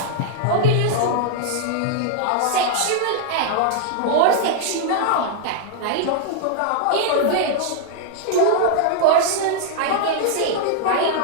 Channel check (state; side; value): different; both; correlation -0.01